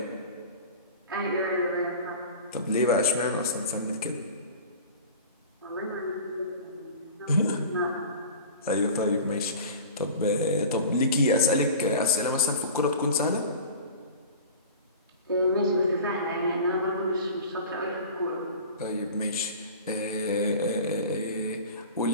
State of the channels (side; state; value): both; inverted; correlation -0.37